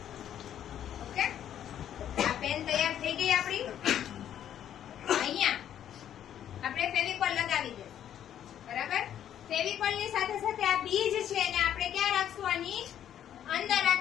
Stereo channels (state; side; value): quieter; right; 10.3 dB